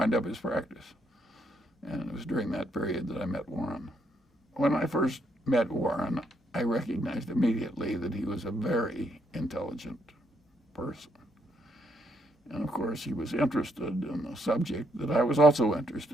up his practice. And it was during that period that I met Warren. When I first met Warren, I recognized immediately that he was a very intelligent person. And of course, he was interested in the subject that I was also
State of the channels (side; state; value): both; normal; correlation 0.74